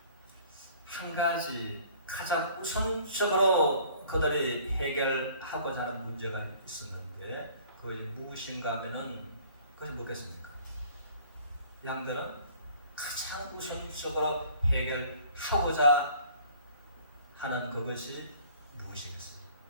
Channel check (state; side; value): inverted; both; correlation -0.53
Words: 한 가지 가장 우선적으로 그들이 해결하고자 하는 문제가 있었는데 그것이 무엇인가 하면은 그것이 뭐겠습니까? 양들은 가장 우선적으로 해결하고자 하는 그것이 무엇이겠습니까?